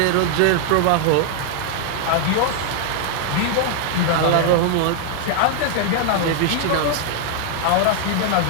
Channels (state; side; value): different; both; correlation 0.00